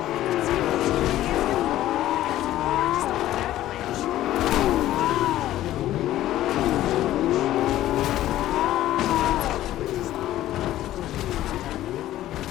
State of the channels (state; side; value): quieter; right; 13.9 dB